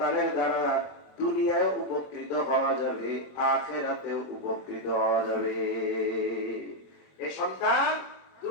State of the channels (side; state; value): right; late; 21 ms